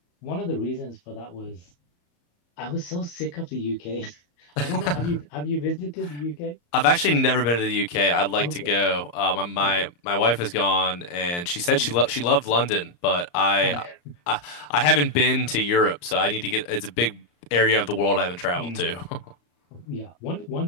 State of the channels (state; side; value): late; right; 34 ms